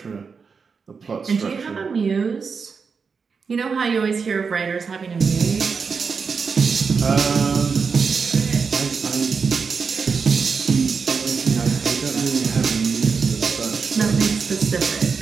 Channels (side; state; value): left; quieter; 5.4 dB